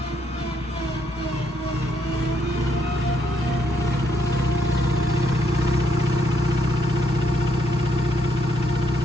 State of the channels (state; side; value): normal; both; correlation 0.74